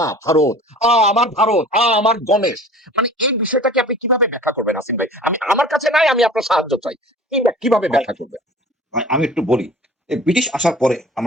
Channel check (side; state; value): both; normal; correlation 0.43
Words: ভারত, আমার ভারত, আমার গণেশ, মানে এই বিষয়টাকে আপনি কিভাবে ব্যাখ্যা করবেন আসিন ভাই? আমি, আমার কাছে নাই, আমি আপনার সাহায্য চাই, কিভাবে ভাই ব্যাখ্যা করবেন? ভাই, আমি একটু বলি। এই ব্রিটিশ আসার পরে